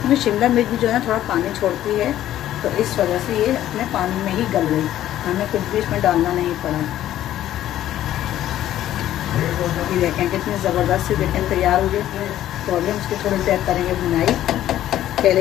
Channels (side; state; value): right; quieter; 12.6 dB